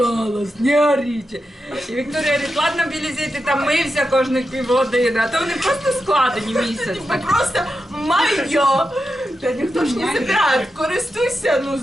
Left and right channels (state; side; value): normal; both; correlation 0.88